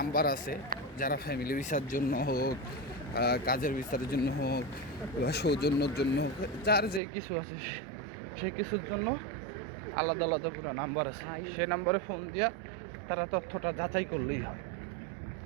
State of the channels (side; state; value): left; drops out; at 7.0 s